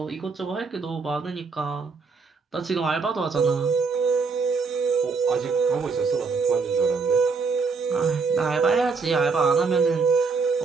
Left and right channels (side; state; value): left; quieter; 4.7 dB